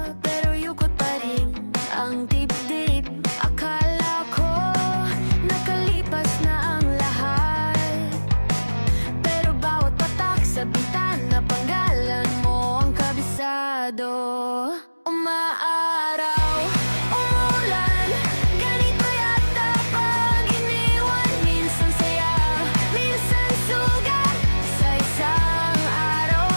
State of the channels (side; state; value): both; inverted; correlation -1.00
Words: pero yukot pa rin ang dibdib. Akala ko nakalipas na ang lahat, pero bawat patak sa bintana panggalan mo ang kabisado. Umaaraw, umulan, ganito yata pag iniwan. Minsan saya, minsan sugat, sa isang araw